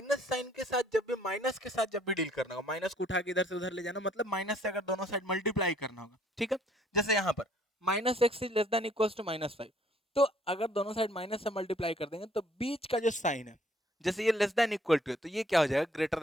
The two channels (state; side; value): normal; both; correlation 0.62